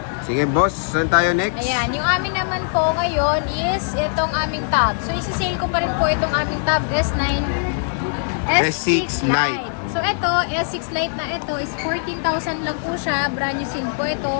Sige boss, saan tayo next? Ayan, yung amin naman po ngayon is itong aming tab. So isi-sale ko pa rin po itong aming tab S9 S6 Lite. So ito, S6 Lite na ito is 14,000 lang po siya. Brand new seal po ito.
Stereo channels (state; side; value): silent; right; digital silence